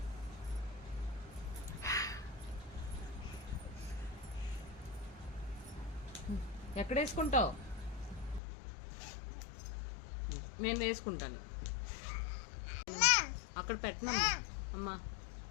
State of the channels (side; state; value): right; drops out; at 8.4 s